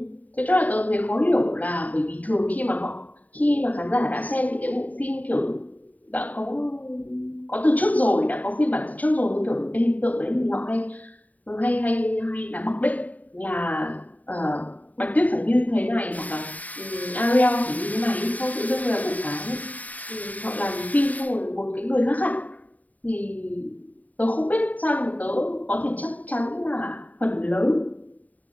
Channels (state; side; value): late; right; 0.075 ms